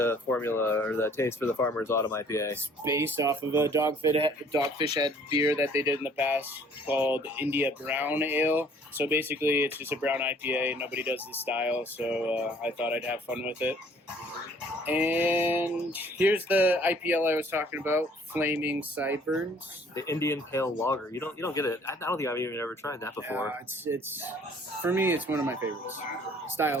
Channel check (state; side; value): normal; both; correlation 0.57